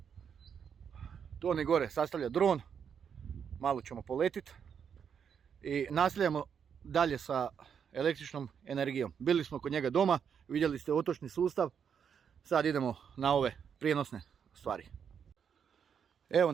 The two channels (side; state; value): left; quieter; 7.4 dB